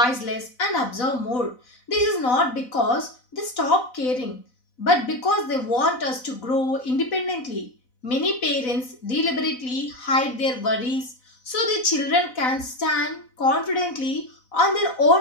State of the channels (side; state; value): right; late; 4.0 ms